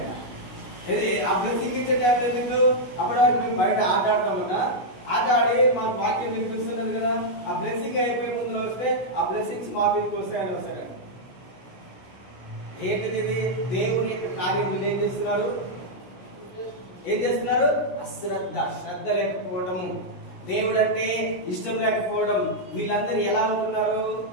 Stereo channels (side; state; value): right; late; 16 ms